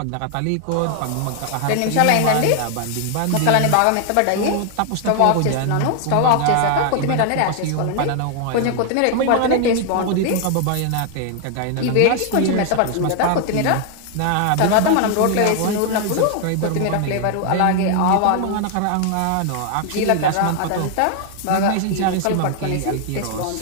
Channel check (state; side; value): different; both; correlation 0.00